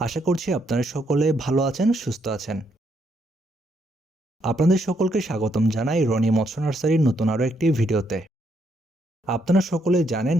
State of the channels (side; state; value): both; normal; correlation 0.75